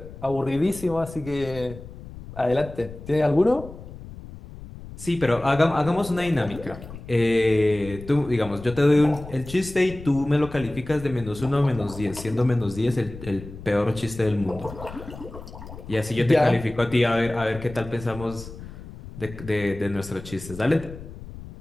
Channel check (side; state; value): left; noise; rumble, 14 dB below the sound